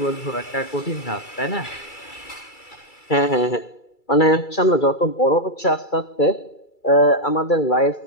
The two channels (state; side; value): late; right; 2.3 ms